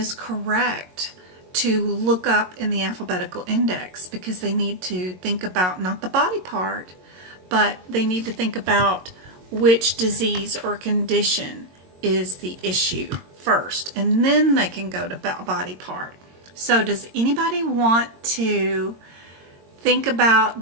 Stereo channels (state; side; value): late; left; 22 ms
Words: correct to look up in the alphabetical index, because they need to think about not the body part, but they need to think about which disease or condition is the issue first, and then they can go to body part. So does anybody want to think about